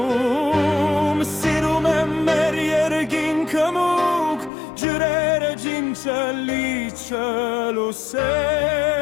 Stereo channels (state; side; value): drops out; right; at 4.5 s